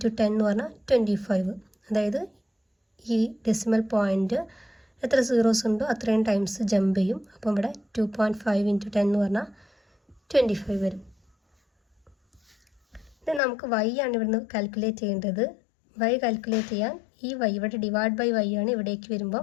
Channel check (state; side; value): drops out; right; at 13.4 s